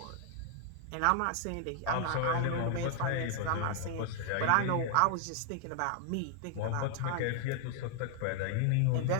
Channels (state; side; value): different; both; correlation 0.00